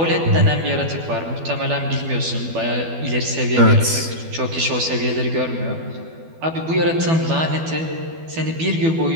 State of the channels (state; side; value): late; left; 12 ms